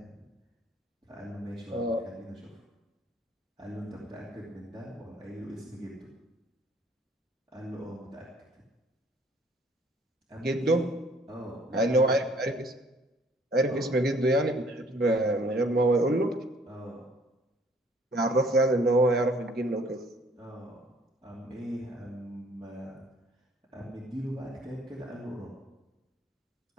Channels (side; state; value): both; normal; correlation 0.59